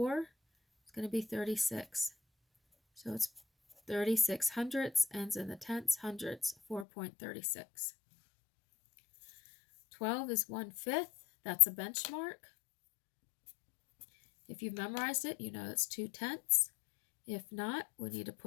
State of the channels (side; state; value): right; drops out; at 6.9 s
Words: is going to be 36. So it's 36 hundredths, ends in the tenths, hundredths, 4.36. 12 is 1/5. That's a benchmark. If you've memorized it, you know it's 2 tenths. If not, we need to